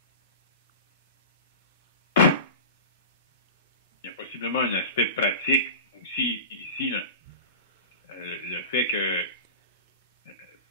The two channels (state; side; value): inverted; both; correlation -0.32